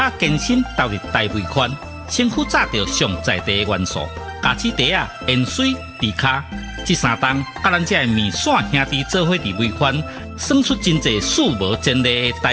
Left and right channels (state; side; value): identical; both; correlation 1.00